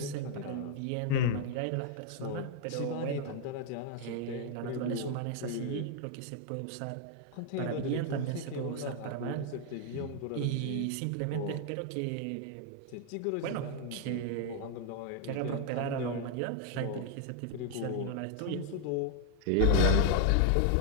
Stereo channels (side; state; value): both; different; correlation 0.00